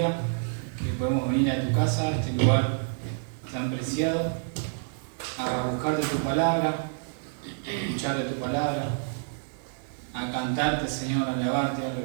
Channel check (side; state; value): left; silent; 59 dB below the other